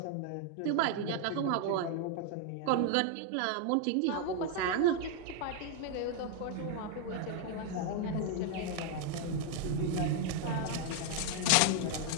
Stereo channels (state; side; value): different; both; correlation 0.00